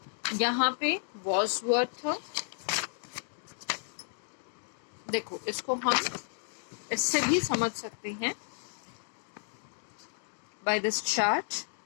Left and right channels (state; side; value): silent; right; digital silence